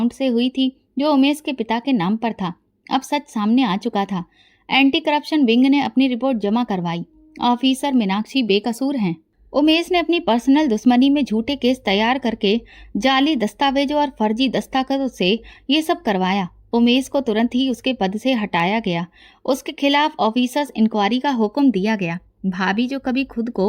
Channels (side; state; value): both; identical; correlation 1.00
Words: से हुई थी जो उमेश के पिता के नाम पर था। अब सच सामने आ चुका था। एंटी करप्शन विंग ने अपनी रिपोर्ट जमा करवाई। ऑफिसर मीनाक्षी बेकसूर हैं। उमेश ने अपनी पर्सनल दुश्मनी में झूठे केस तैयार करके जाली दस्तावेजों और फर्जी दस्तखतों से ये सब करवाया। उमेश को तुरंत ही उसके पद से हटाया गया। उसके खिलाफ ऑफिसर्स इंक्वायरी का हुक्म दिया गया। भाभी, जो कभी खुद